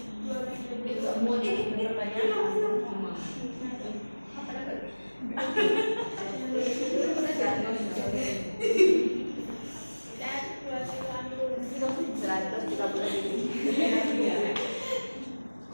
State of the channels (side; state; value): both; inverted; correlation -1.00